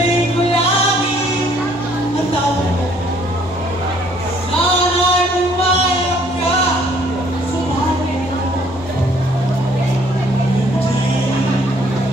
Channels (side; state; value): both; normal; correlation 0.62